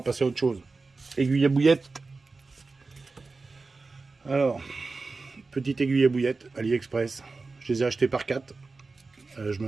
passer à autre chose. Aiguille à bouillette. Alors, petite aiguille à bouillette, AliExpress. Je les ai achetées par 4. Je me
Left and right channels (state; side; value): quieter; left; 3.9 dB